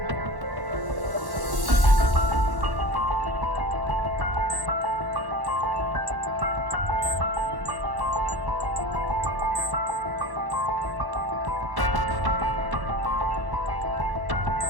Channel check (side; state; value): left; late; 1.1 ms